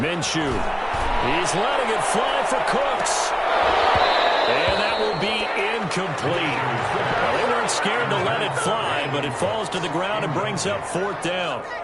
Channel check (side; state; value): both; identical; correlation 1.00